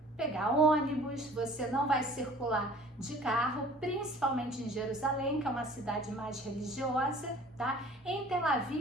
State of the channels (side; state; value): both; normal; correlation 0.49